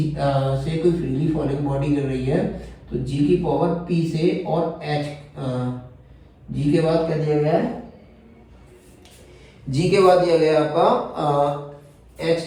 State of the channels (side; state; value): both; identical; correlation 1.00